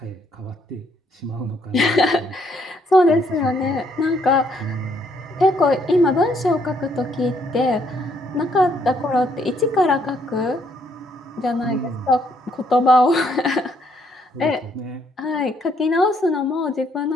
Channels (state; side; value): normal; both; correlation 0.70